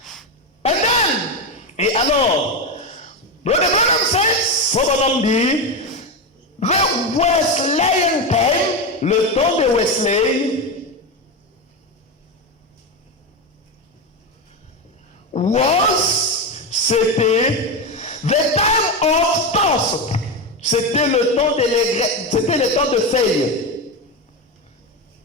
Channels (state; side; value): normal; both; correlation 0.14